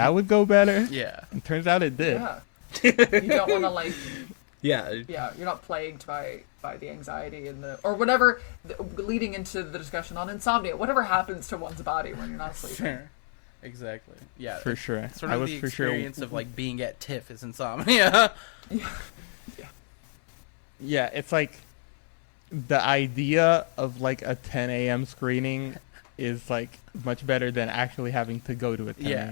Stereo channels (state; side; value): silent; right; 60 dB below the other